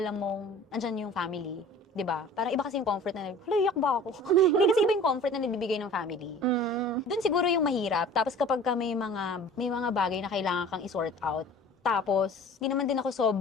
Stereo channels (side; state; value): both; normal; correlation 0.45